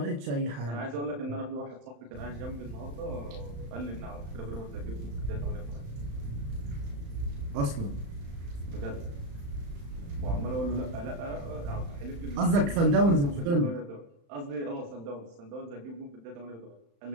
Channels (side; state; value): left; late; 35 ms